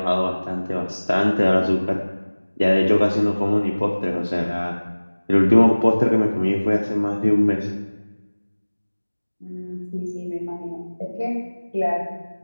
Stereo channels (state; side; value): inverted; both; correlation -1.00